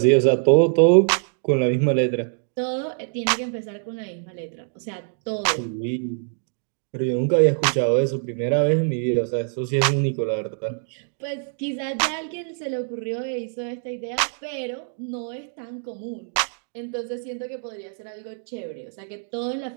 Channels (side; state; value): left; silent; 62 dB below the other